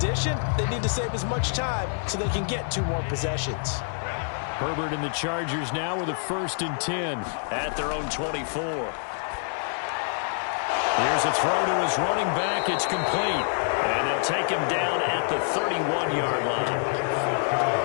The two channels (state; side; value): silent; right; digital silence